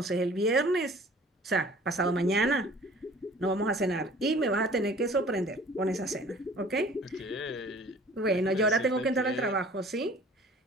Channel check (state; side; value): normal; both; correlation 0.49